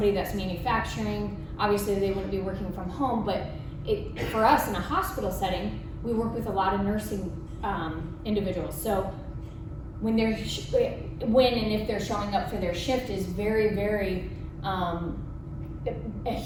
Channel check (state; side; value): identical; both; correlation 1.00